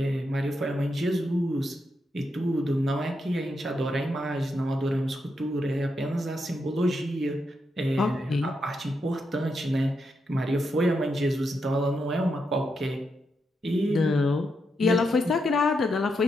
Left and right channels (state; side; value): normal; both; correlation 0.83